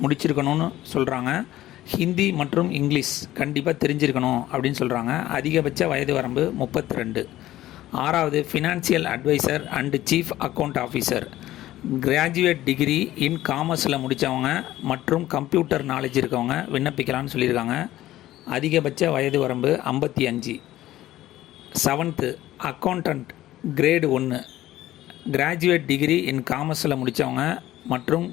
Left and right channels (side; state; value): right; quieter; 14.8 dB